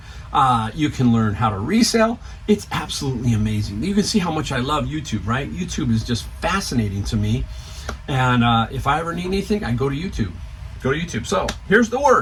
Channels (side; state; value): both; identical; correlation 1.00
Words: You can learn how to resell. It's absolutely amazing. You can see how much I love YouTube, right? YouTube is just fascinating to me. And if I ever need anything, I go to YouTube. Go to YouTube. So here's the